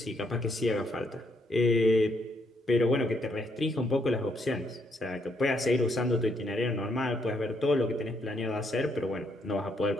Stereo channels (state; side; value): normal; both; correlation 0.74